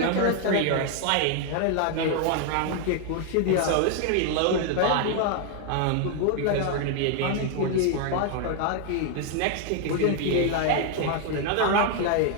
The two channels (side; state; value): both; different; correlation 0.00